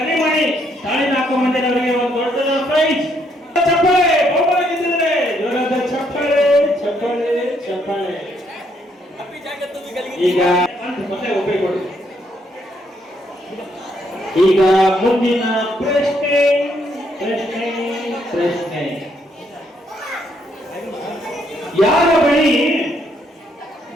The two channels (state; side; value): normal; both; correlation 0.72